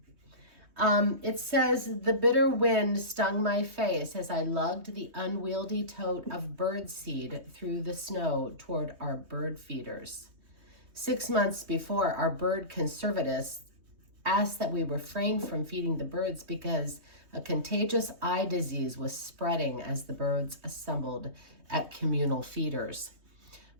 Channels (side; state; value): left; late; 3.2 ms